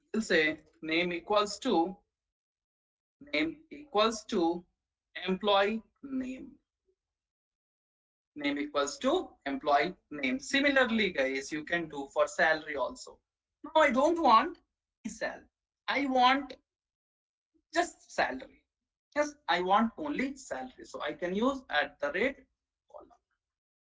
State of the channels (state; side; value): identical; both; correlation 1.00